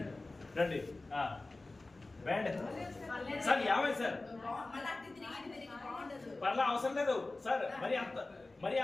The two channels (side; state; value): right; quieter; 3.1 dB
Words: రండి బ్యాండ్ సార్. యాభై సార్ పర్లా అవసరం లేదు సార్. మరి